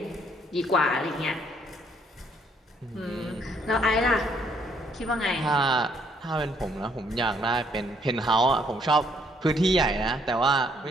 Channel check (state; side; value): normal; both; correlation 0.67